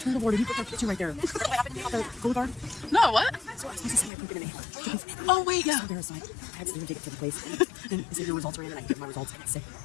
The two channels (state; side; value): drops out; right; at 4.1 s